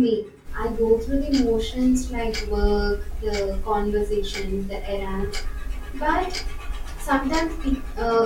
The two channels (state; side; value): identical; both; correlation 1.00